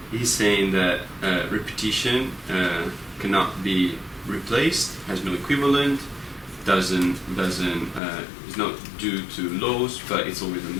saying that repetition cannot be replaced, has no equivalent, is not due to laws, but it's always a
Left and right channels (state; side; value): drops out; right; at 8.0 s